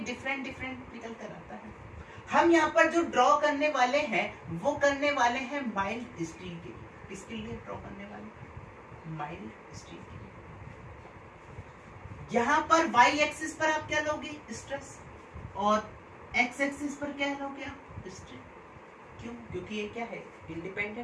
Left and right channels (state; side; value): identical; both; correlation 1.00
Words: डिफरेंट डिफरेंट निकल कर आता है। हम यहाँ पर जो ड्रॉ करने वाले हैं वो करने वाले हैं माइल्ड स्टील के लिए। किसके लिए ड्रॉ करने वाले, माइल्ड स्टील के लिए। यहाँ पर वाई एक्सिस पर आप क्या लोगे, स्ट्रेस, और एक्स एक्सिस पर क्या लोगे आप, स्ट्रेन। क्यों, क्योंकि ये क्या है,